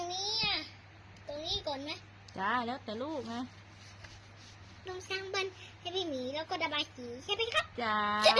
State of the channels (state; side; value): identical; both; correlation 1.00